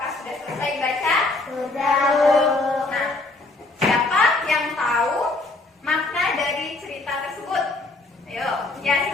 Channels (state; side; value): quieter; right; 3.1 dB